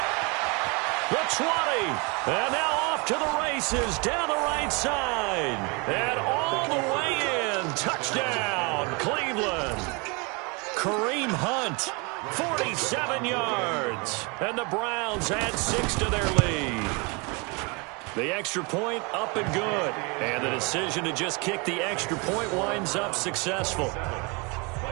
The 20. And now off to the races down the right side. And all the way in. Touchdown, Cleveland. Kareem Hunt, 47 yards. And the Browns add 6 to their lead. The extra point up and good. And the decision to just kick the extra point winds up successful.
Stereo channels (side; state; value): left; quieter; 30.2 dB